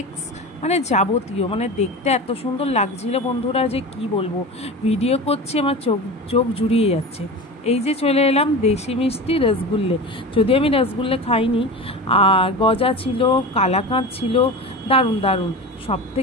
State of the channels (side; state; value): both; normal; correlation 0.29